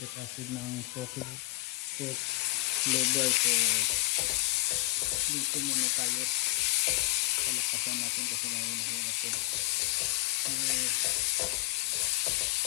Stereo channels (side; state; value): right; quieter; 20.1 dB